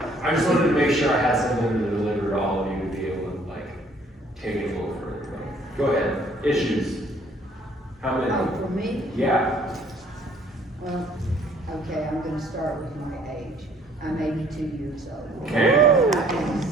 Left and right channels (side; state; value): both; normal; correlation 0.60